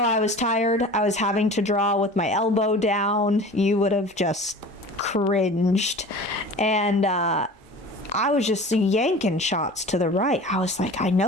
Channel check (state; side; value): normal; both; correlation 0.40